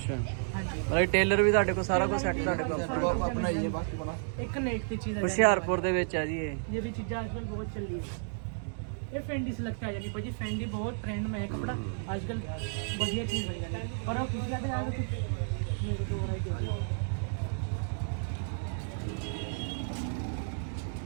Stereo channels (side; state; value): left; silent; digital silence